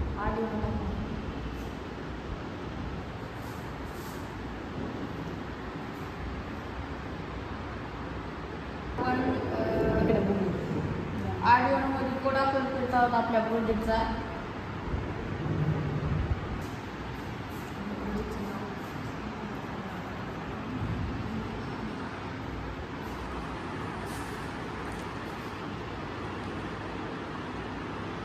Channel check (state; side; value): identical; both; correlation 1.00